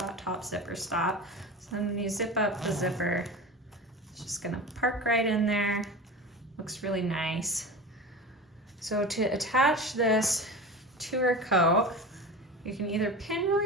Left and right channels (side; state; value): both; normal; correlation 0.31